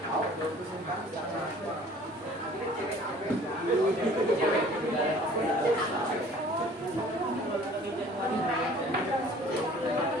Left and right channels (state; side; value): normal; both; correlation 0.51